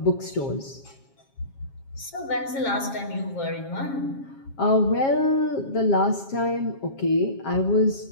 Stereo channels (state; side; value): late; right; 7.4 ms